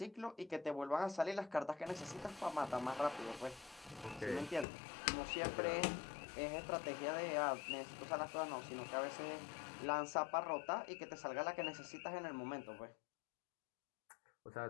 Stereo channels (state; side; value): drops out; right; at 4.7 s